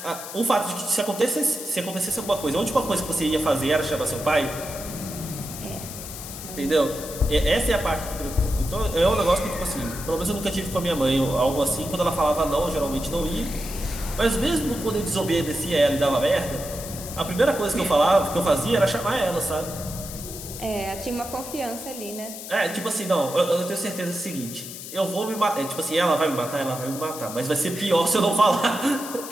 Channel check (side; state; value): left; noise; hiss, 11 dB below the sound